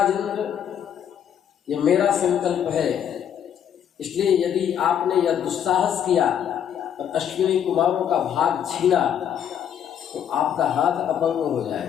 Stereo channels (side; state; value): right; quieter; 9.0 dB